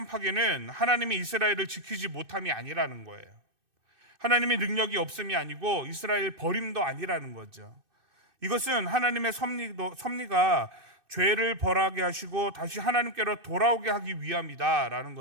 파괴는 하나님이 이스라엘을 지키지 못함이 아니라는 거예요. 하나님의 능력이 없음이 아니고 이스라엘 버림도 아니라는 거죠. 이것은 하나님의 섭리가 죄를 벌하게 하시고 다시 하나님께로 돌아오게 하기 위함이다라는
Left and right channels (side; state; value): left; late; 2.6 ms